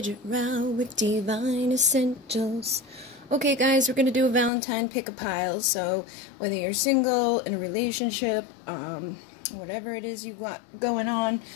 Rau with Pleiadian Essentials. Okay guys, we're going to do a Valentine pick-a-pile, so whether you're single, in a relationship, whatever it is you got going on,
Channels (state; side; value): drops out; right; at 4.5 s